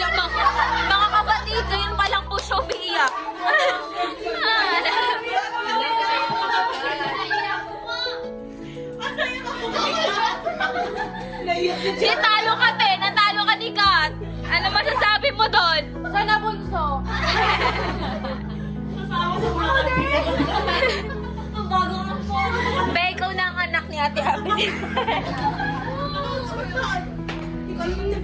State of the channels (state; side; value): identical; both; correlation 1.00